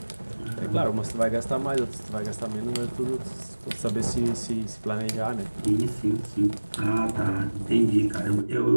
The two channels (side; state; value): both; inverted; correlation -1.00